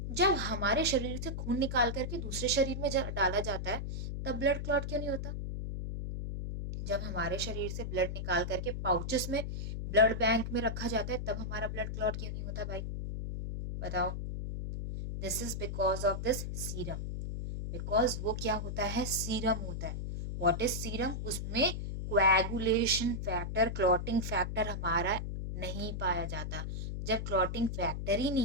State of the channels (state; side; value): noise; left; hum, 4 dB below the sound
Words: जब हमारे शरीर से खून निकाल करके दूसरे शरीर में डाला जाता है, तब ब्लड क्लॉट क्यों नहीं होता? जब हमारे शरीर से ब्लड निकाल करके पाउचेस में ब्लड बैंक में रखा जाता है, तब हमारा ब्लड क्लॉट क्यों नहीं होता भाई? बताओ। This is because of this serum. Because वो क्या होता है? सीरम होता है। What is serum? उसमें कोएगुलेशन फैक्टर, क्लॉटिंग फैक्टर हमारा नहीं पाया जाता। जब क्लॉटिंग फैक्टर ही